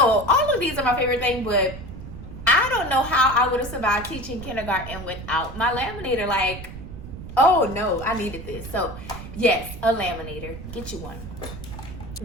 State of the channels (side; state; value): right; noise; rumble, 11 dB below the sound